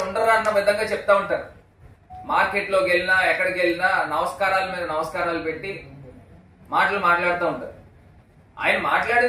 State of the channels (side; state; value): both; identical; correlation 1.00